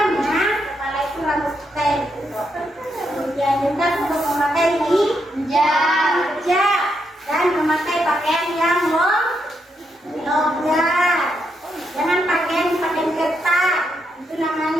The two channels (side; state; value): both; normal; correlation 0.80